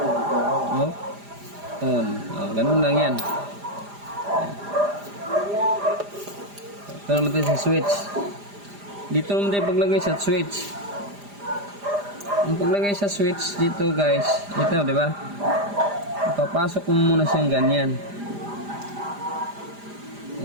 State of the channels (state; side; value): late; left; 4.9 ms